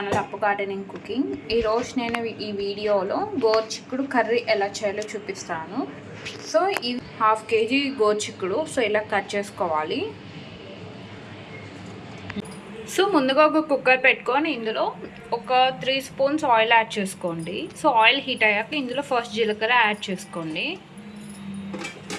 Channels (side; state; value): both; identical; correlation 1.00